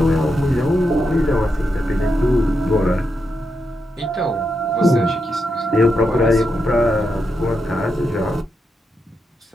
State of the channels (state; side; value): normal; both; correlation 0.84